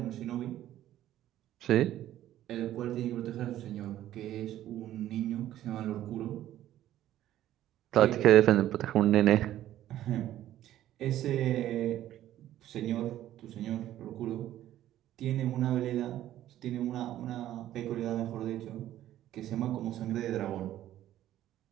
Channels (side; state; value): left; quieter; 12.9 dB